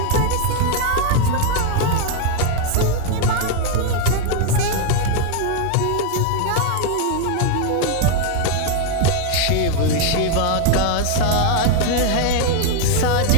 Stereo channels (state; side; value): different; both; correlation 0.01